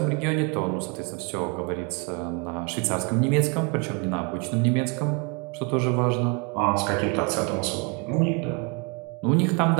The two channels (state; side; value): quieter; left; 33.6 dB